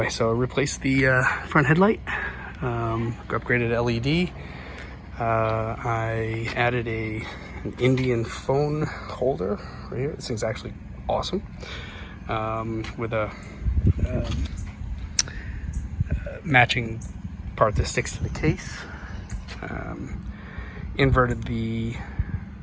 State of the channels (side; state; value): both; identical; correlation 1.00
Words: so I replaced the front headlight, upgraded LED. I added an Indian phone holder right here. This thing's actually awesome, with a matching part that sticks to the case. Inverted the